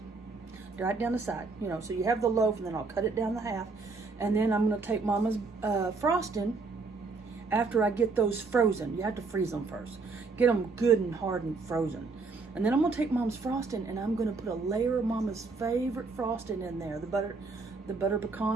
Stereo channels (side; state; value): left; quieter; 4.2 dB